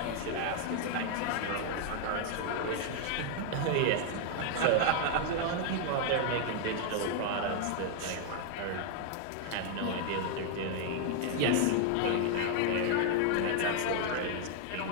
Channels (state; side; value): different; both; correlation 0.00